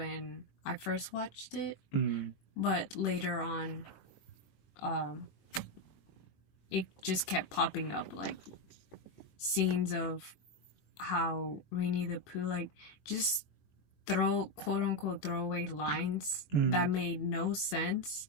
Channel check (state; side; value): late; right; 21 ms